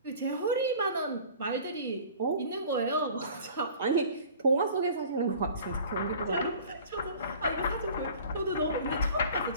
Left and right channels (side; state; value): both; inverted; correlation -0.46